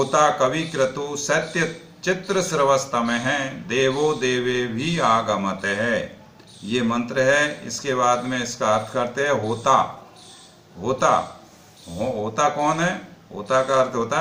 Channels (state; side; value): identical; both; correlation 1.00